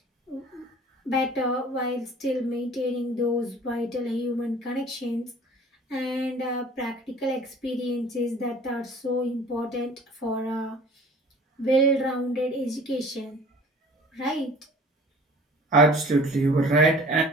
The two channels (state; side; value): normal; both; correlation 0.47